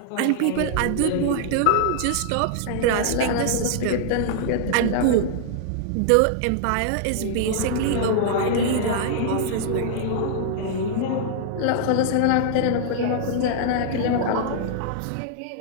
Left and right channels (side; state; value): both; different; correlation -0.01